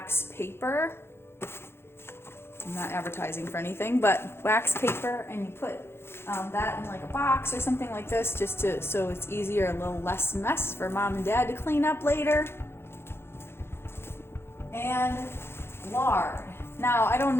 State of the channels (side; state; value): right; late; 0.12 ms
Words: paper. I'm not advertising for anything, but wax paper, and you put that in like a box or something like this, just so it's easier, a little less mess for mom and dad to clean up later. And lard. Now, I don't